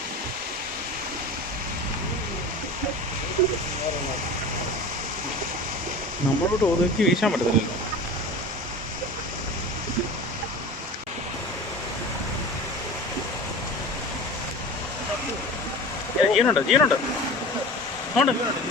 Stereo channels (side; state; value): both; normal; correlation 0.35